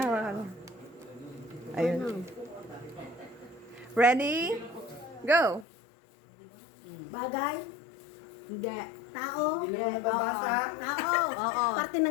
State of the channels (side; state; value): right; drops out; at 5.7 s